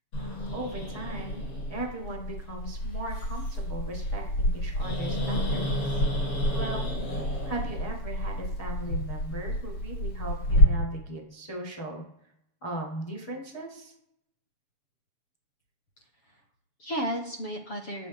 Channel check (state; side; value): late; right; 7.1 ms